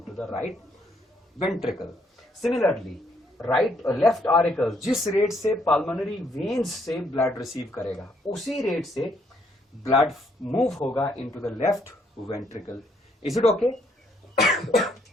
the right ventricle. Similarly right left auricle जिस रेट से पल्मोनरी वेन्स से ब्लड रिसीव करेगा, उसी रेट से ब्लड मूव होगा into the left ventricle. Is it okay?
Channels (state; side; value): normal; both; correlation 0.70